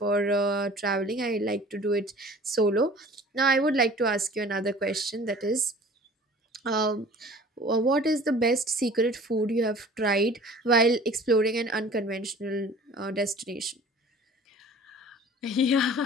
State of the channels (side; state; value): both; normal; correlation 0.46